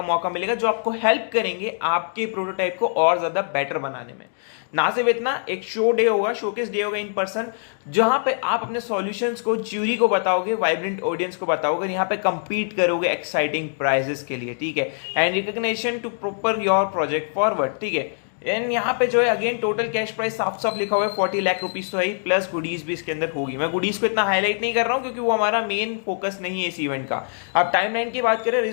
मौका मिलेगा, जो आपको हेल्प करेंगे आपके प्रोटोटाइप को और ज्यादा बेटर बनाने में। ना सिर्फ इतना, एक शोकेस डे होगा इन पर्सन, जहां पे आप अपने सॉल्यूशंस को ज्यूरी को बताओगे, वाइब्रेंट ऑडियंस को बताओगे, यहाँ पे compete करोगे एक्साइटिंग प्राइजेस के लिए, ठीक है। And recognition to proper your project forward, ठीक है। एंड यहाँ पे जो है अगेन टोटल कैश प्राइस साफ साफ लिखा हुआ है 40 लाख रुपीज तो है, प्लस गुडीज भी इसके अंदर होगी। मैं गुडीज को इतना हाईलाइट नहीं कर रहा हूँ क्योंकि वो हमारा मेन फोकस नहीं है इस इवेंट का। अब टाइमलाइन की बात करें,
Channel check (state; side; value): silent; right; digital silence